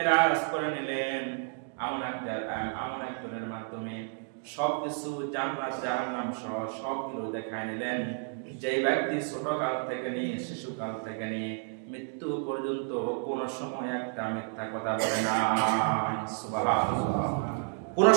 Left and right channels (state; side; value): silent; left; 55 dB below the other